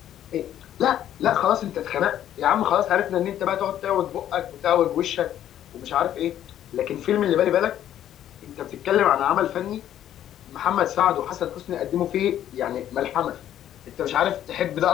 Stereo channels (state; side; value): quieter; right; 11.3 dB